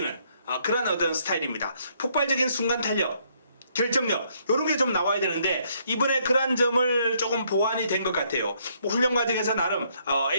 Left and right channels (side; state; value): both; inverted; correlation -0.69